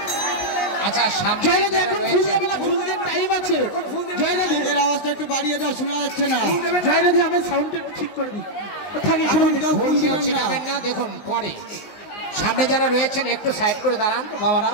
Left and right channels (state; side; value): late; right; 20 ms